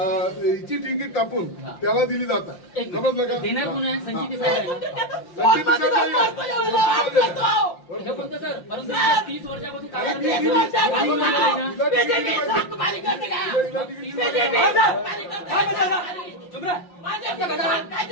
तिकीट कापून त्याला दिली जातात। समजलं का? देणार कोण आहे? संचित साहेब सर, परंतु 30 वर्षापासून काय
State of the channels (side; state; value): right; late; 5.7 ms